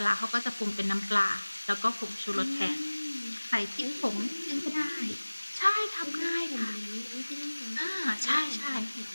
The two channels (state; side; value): inverted; both; correlation -1.00